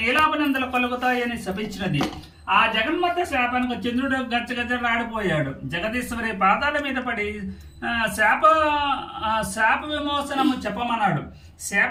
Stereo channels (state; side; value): identical; both; correlation 1.00